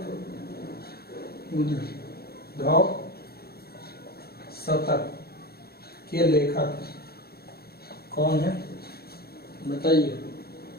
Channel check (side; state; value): right; late; 0.45 ms